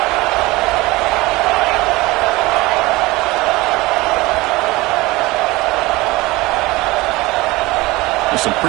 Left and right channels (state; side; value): quieter; left; 21.0 dB